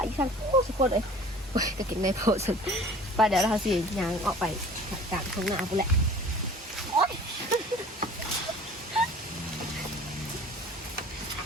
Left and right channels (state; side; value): normal; both; correlation 0.46